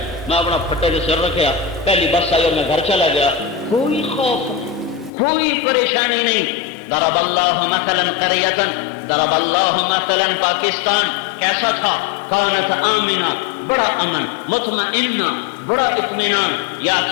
میں اپنا پھٹے سے سر رکھیا، پہلی بس آئی اور میں گھر چلا گیا، کوئی خوف نہیں، کوئی پریشانی نہیں۔ ضرب اللہ مثلا قریۃ، ضرب اللہ مثلا پاکستان کیسا تھا؟ کانت آمنہ، بڑا امن، مطمئنہ، بڑا اطمینان،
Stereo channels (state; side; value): drops out; right; at 5.1 s